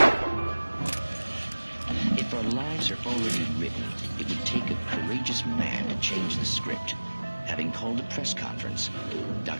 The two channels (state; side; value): inverted; both; correlation -1.00